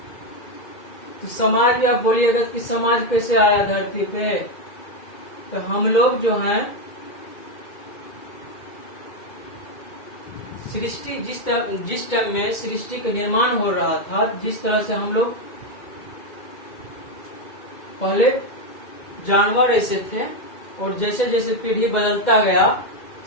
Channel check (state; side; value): late; right; 2.1 ms